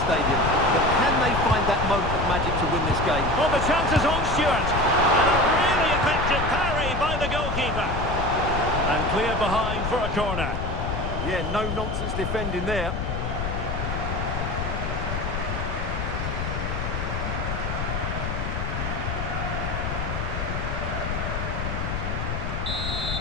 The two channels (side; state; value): left; noise; rumble, 3 dB below the sound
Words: stadium, but can they find that moment of magic to win this game? Well, the chance is on, Stuart. And a really effective parry by the goalkeeper. And clear behind for a corner. Yeah, no nonsense defending there.